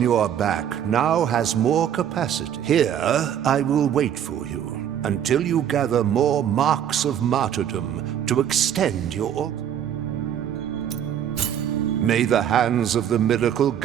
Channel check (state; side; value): quieter; left; 9.6 dB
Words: your back now has more capacity. Here, I will wait for you until you gather more marks of martyrdom to extend your altar. May the hands of the miracle